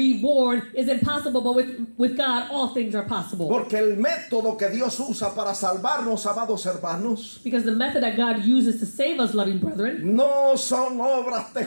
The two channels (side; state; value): both; inverted; correlation -1.00